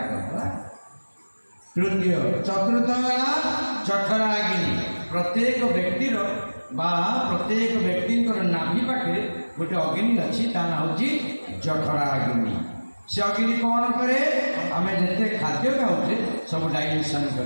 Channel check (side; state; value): both; inverted; correlation -1.00